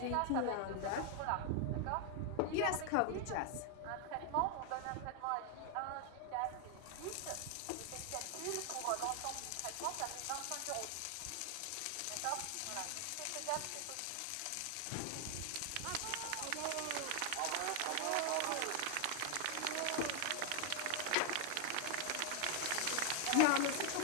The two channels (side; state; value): both; different; correlation 0.00